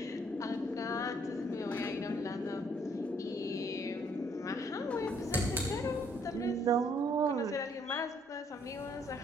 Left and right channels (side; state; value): both; normal; correlation 0.66